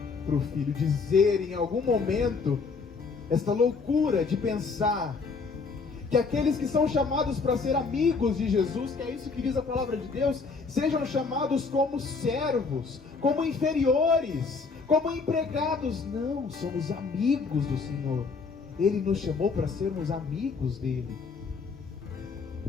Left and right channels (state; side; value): quieter; right; 4.6 dB